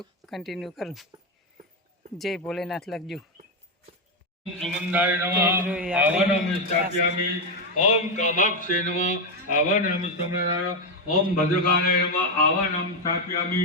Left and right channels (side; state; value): both; normal; correlation 0.05